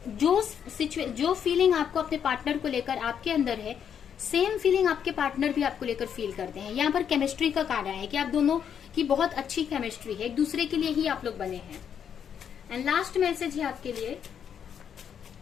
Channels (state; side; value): quieter; right; 8.2 dB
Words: जो फीलिंग आपको अपने पार्टनर को लेकर आपके अंदर है, सेम फीलिंग आपके पार्टनर भी आपको लेकर फील करते हैं। यहाँ पर केमिस्ट्री का कार्ड है कि आप दोनों की बहुत अच्छी केमिस्ट्री है, एक दूसरे के लिए ही आप लोग बने हैं। एंड लास्ट मैसेज है आपके लिए,